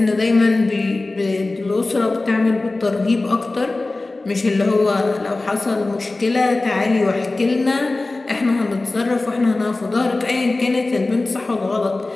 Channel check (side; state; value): right; quieter; 3.1 dB